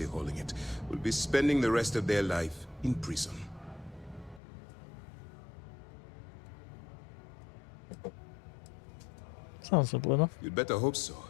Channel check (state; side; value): drops out; right; at 4.4 s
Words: holding it will be spending the rest of their life in prison. Sounds simple enough. You'd better hope so.